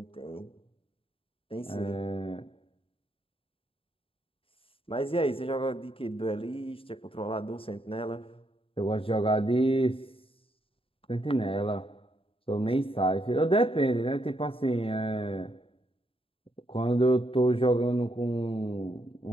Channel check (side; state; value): right; late; 0.27 ms